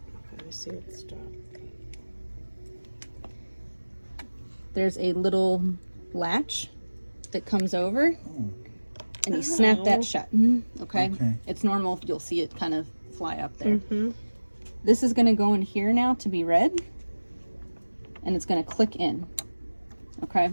I see it stop. There's a little latch that comes over, and you snap that shut. Okay? Okay. It's normal. You'll see it kind of fly up there. Mm-hmm. This is going to go in here now to be read, and it's going to click in. Okay?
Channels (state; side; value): inverted; both; correlation -1.00